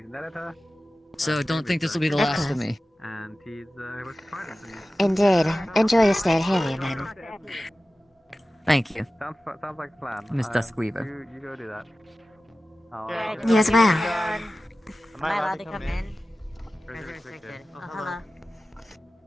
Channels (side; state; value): both; normal; correlation 0.95